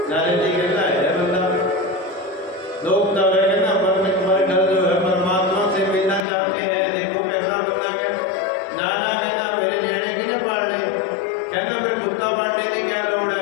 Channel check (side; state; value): right; drops out; at 6.2 s